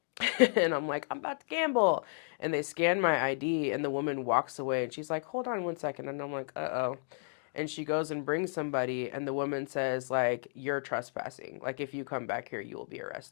and I'm like, I'm about to gamble. And they scan my ID, and the woman walks away, and she's like, hold on 1 second. And I'm like, uh-oh. And she goes and brings somebody, and the woman says, like, you're trespassing. Like, if you come back here, you will be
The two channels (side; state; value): right; silent; digital silence